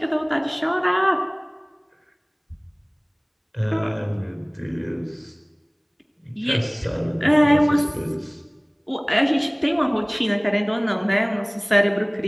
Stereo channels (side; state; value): both; identical; correlation 1.00